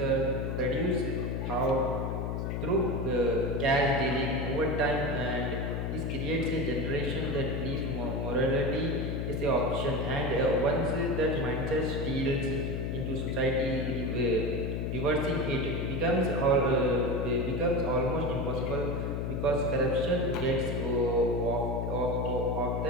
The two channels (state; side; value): noise; left; hum, 1 dB below the sound